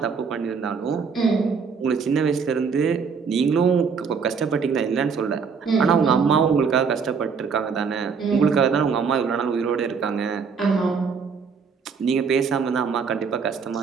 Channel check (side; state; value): left; quieter; 5.8 dB